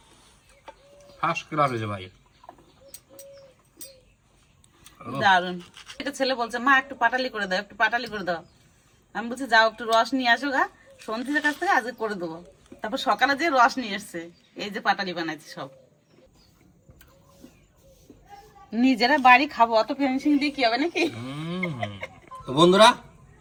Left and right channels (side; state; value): both; identical; correlation 1.00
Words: ফার্স্ট ক্লাস হয়েছে ভাই। দারুন। একটা ছেলে বলছে মা একটু পাটালি করে দাও, একটু পাটালি করে দাও। আমি বলছি যাও একটু রস নিয়ে আসো গা, সন্ধিদের কাছ থেকে আজকে করে দেবো। তারপর সকালে যে রস নিয়ে এসছে, এই যে পাটালি বানাইছি সব। নিজেরা বাড়ি খাবো, অত ফিনিশিং দিয়ে কি হবে নাকি? তো বন্ধুরা,